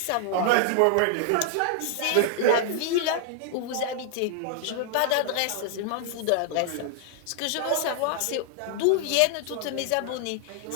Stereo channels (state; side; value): different; both; correlation 0.00